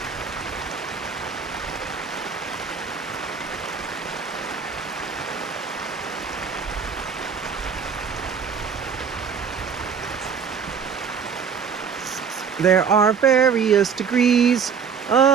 There are various degrees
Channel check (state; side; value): quieter; left; 6.6 dB